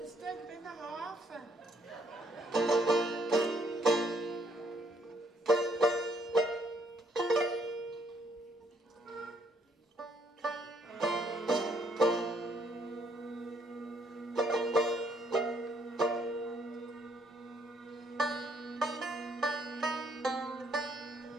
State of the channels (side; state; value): both; normal; correlation 0.69